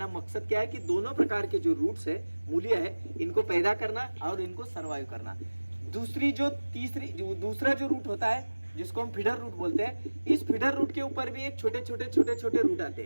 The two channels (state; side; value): inverted; both; correlation -1.00